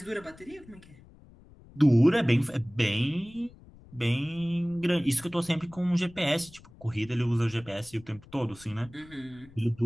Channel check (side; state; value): left; noise; rumble, 23 dB below the sound